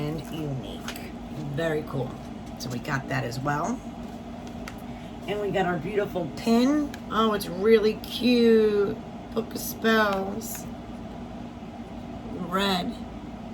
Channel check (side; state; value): both; identical; correlation 1.00